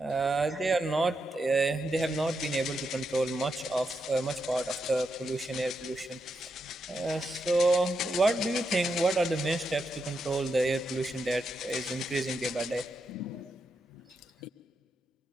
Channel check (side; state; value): both; normal; correlation 0.84